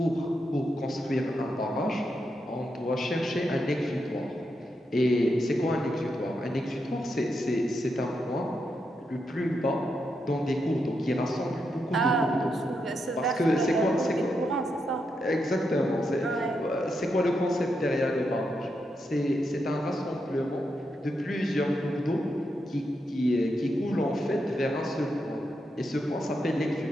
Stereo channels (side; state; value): both; normal; correlation 0.84